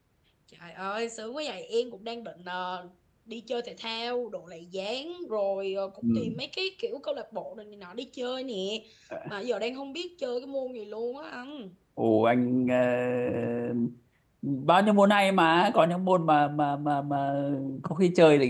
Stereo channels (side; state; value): both; identical; correlation 1.00